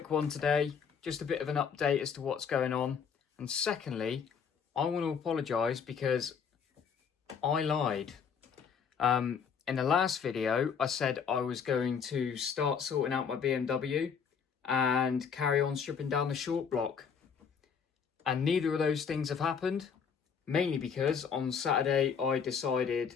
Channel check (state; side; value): quieter; right; 6.7 dB